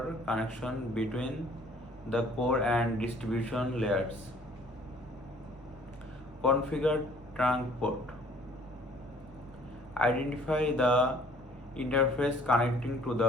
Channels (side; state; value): both; normal; correlation 0.56